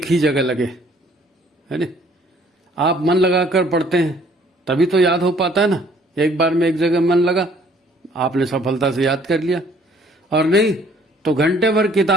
ही जगह लगे, है ना? आप मन लगाकर पढ़ते हैं तभी तो याद हो पाता है ना। एक बार में एक जगह मन लगा, आपने सफलता से याद कर लिया। और नहीं तो घंटे भर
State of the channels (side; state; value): both; normal; correlation 0.59